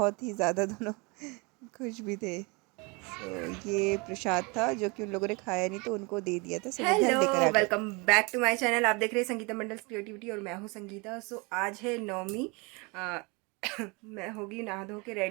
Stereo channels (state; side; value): quieter; left; 28.5 dB